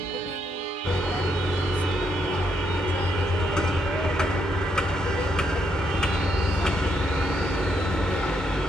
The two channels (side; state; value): both; normal; correlation 0.77